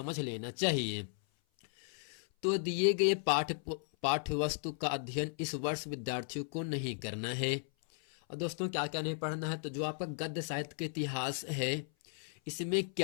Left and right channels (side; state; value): right; silent; 54 dB below the other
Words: लेना चाहिए। तो दिए गए पाठ्य वस्तु का अध्ययन इस वर्ष विद्यार्थियों को नहीं करना है। और दोस्तों, क्या क्या नहीं पढ़ना है, तो जो आपका गद्य साहित्य का इतिहास है, इसमें